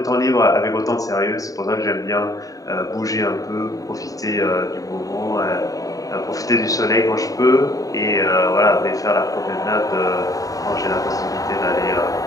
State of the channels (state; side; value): late; right; 0.17 ms